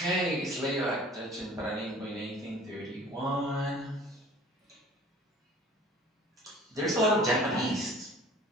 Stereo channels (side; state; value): both; normal; correlation 0.48